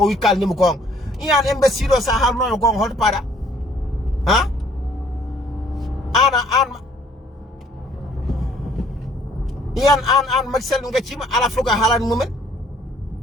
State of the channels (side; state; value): both; normal; correlation 0.60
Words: wi kalnimo gonga iyan imbécile o sa haalnoyo gonga holto paɗa ha an iyan an Macky Sall gaccima ala fof ko haalani mumen